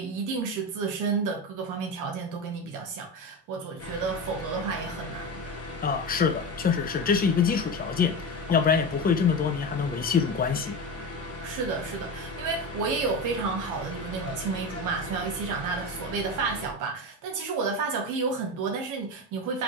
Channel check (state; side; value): normal; both; correlation 0.22